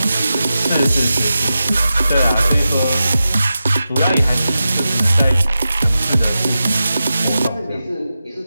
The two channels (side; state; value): both; inverted; correlation -0.92